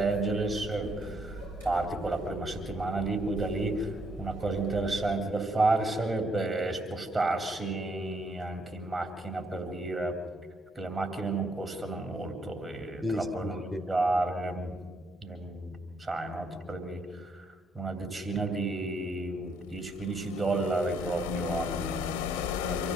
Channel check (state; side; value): normal; both; correlation 0.71